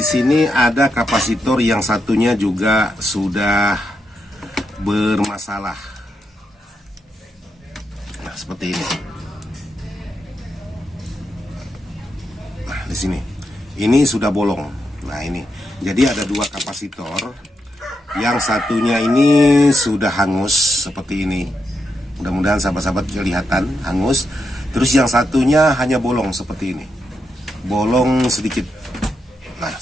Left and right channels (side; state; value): both; normal; correlation 0.84